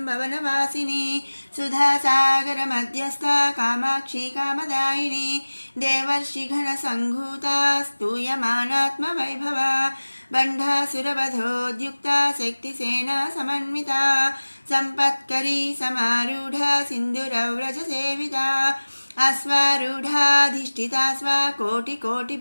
सुधासागरमध्यस्था कामाक्षी कामदायिनी देवर्षिगणसङ्घूता स्तूयमानात्मवैभवा बण्ढासुरवधोद्युक्ता शक्तिसेना समन्विता सम्पत्करी समारूढा सिन्दूरव्रजसेविता अश्वारूढाधिष्ठिता स्वा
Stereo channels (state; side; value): inverted; both; correlation -1.00